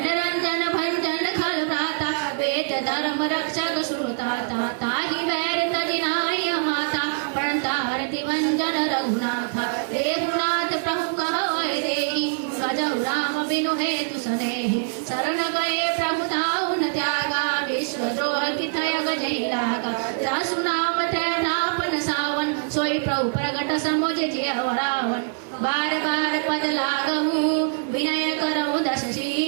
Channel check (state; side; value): silent; left; digital silence